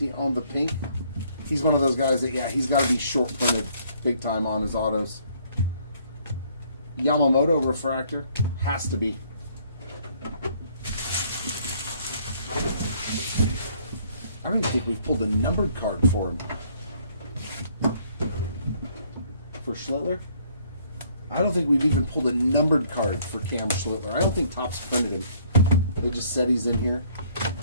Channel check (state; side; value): inverted; both; correlation -0.62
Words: on the pink. He's one of those guys that, yeah, he's got to be short printed big time on his autos. Yamamoto refractor. Has to be. I don't even think we've pulled a numbered card for him. For Schlittler? I don't think we've even pulled a numbered card for Cam Schlittler. I don't think Topps printed him. They just said he's in here.